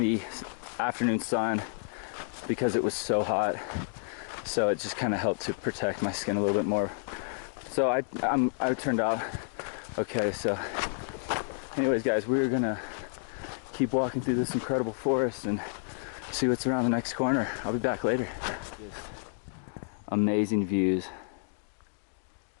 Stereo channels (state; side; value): silent; right; digital silence